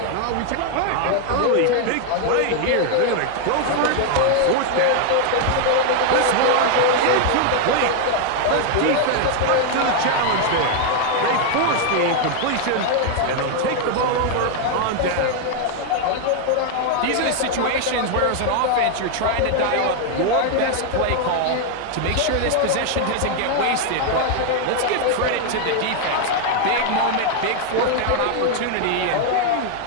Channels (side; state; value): both; different; correlation 0.00